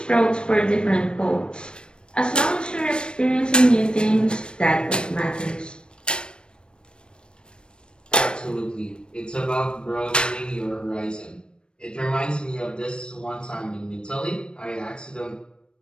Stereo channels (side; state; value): right; late; 0.054 ms